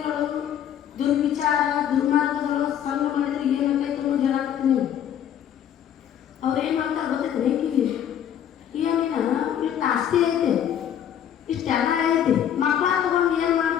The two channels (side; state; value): right; quieter; 9.7 dB